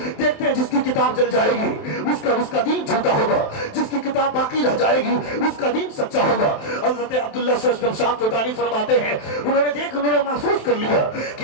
دیکھتے ہیں جس کی کتاب جل جائے گی اس کا دین جھوٹا ہوگا، جس کی کتاب باقی رہ جائے گی اس کا دین سچا ہوگا۔ حضرت عبداللہ شاہ توتانی فرماتے ہیں انہوں نے محسوس کر لیا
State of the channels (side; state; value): right; late; 27 ms